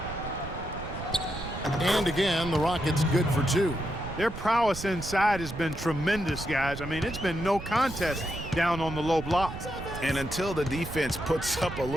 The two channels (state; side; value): noise; right; rumble, 10 dB below the sound